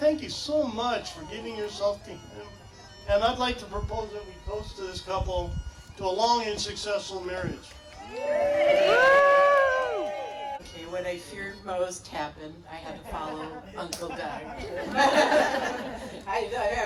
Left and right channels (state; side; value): identical; both; correlation 1.00